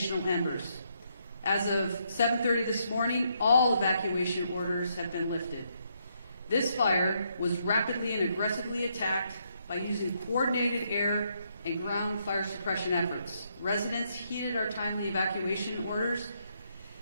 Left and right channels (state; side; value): inverted; both; correlation -0.75